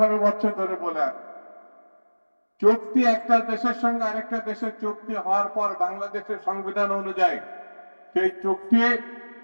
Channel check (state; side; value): inverted; both; correlation -1.00